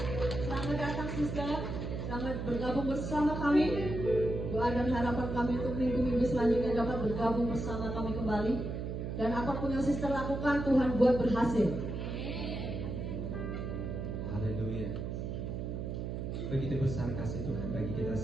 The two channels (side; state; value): right; noise; hum, 4 dB below the sound